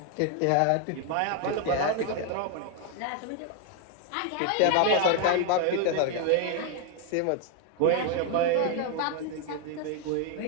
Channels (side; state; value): both; different; correlation 0.01